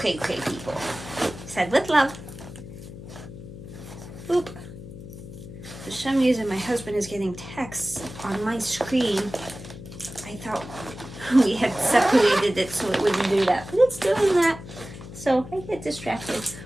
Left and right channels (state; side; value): noise; left; hum, 13 dB below the sound